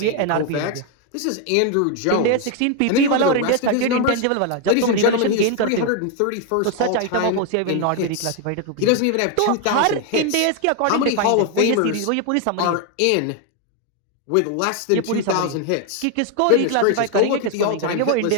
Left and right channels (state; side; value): different; both; correlation 0.01